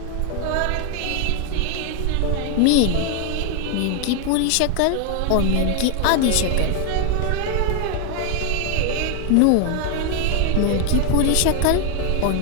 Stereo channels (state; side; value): different; both; correlation 0.01